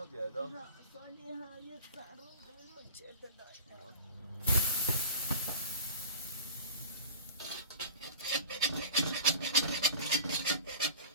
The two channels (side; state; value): both; inverted; correlation -0.37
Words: هذا صالحة يتصارون بالمجد دايما